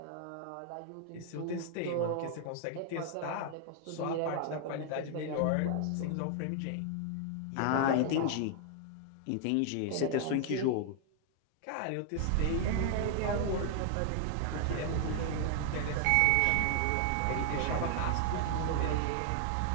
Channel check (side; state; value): both; different; correlation 0.00